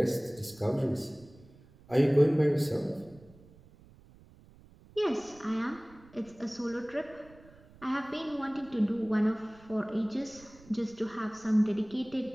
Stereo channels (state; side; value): noise; right; rumble, 24 dB below the sound